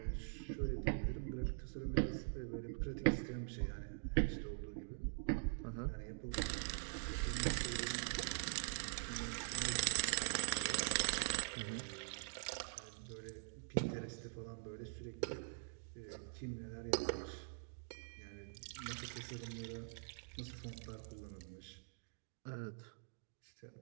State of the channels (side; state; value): left; silent; digital silence